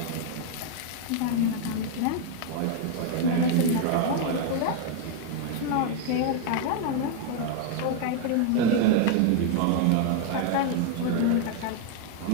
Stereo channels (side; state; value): both; different; correlation 0.00